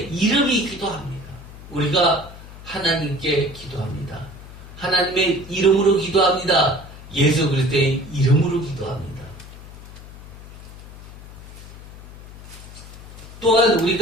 이름이기도 합니다. 우리가 하나님께 기도합니다. 하나님의 이름으로 기도합니다. 예수 그리스도의 이름으로 기도합니다. 또한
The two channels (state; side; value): noise; left; hum, 16 dB below the sound